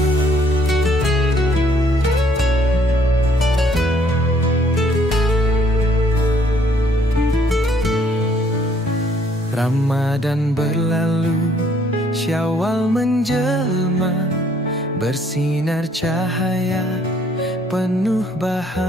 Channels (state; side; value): normal; both; correlation 0.64